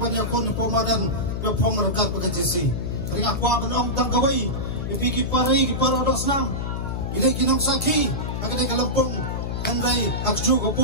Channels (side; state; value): left; noise; hum, 3 dB below the sound